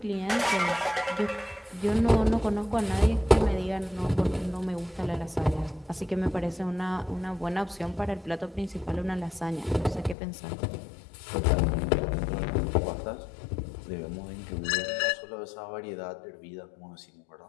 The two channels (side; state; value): right; drops out; at 10.2 s